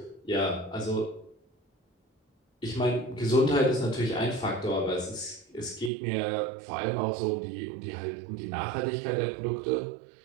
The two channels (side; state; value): left; drops out; at 5.9 s